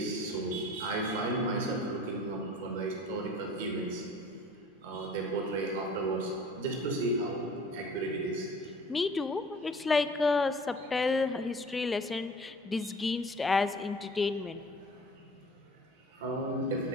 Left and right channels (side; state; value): both; normal; correlation 0.46